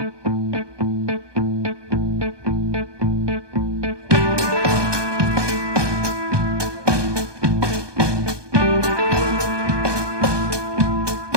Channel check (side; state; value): left; late; 1.2 ms